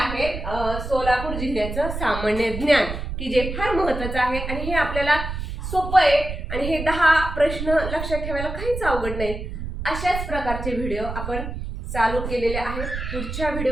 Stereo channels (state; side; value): noise; right; rumble, 6 dB below the sound